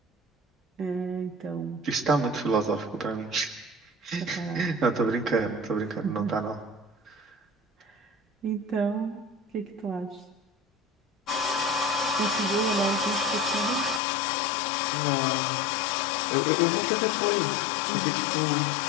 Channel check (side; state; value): right; drops out; at 14.0 s